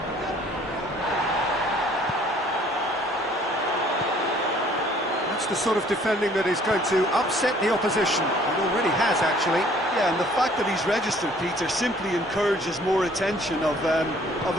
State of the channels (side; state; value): both; normal; correlation 0.57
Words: That's the sort of defending that is going to upset the opposition. It already has, actually. Yeah, and the fact that he's registered, Peter, simply encourages more attention of a